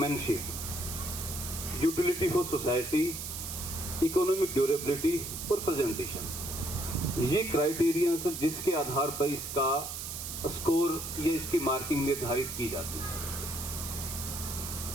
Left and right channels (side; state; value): right; noise; hiss, 6 dB below the sound